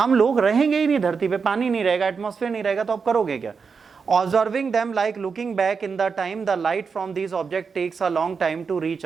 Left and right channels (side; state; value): left; quieter; 5.5 dB